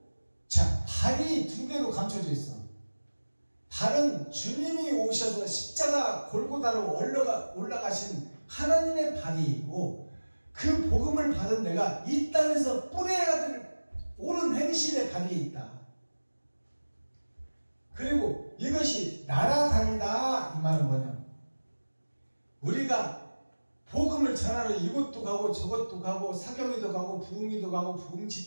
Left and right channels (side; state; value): both; inverted; correlation -1.00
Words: 자, 발이 2개로 감춰져 있어. 발은 주님이 오셔서 십자가 골고다로 올라가신 하나님의 발이 있고 그 복음을 받은 내가 이 땅에서 뿌려야 될 옳은 행실에 가리에 있다. 그리고 이것이 날아다니다 이 말은 뭐냐, 우리가 복음을 전하러 이곳도 가고 저곳도 가고 사경회도 가고 부흥회도 가고 부흥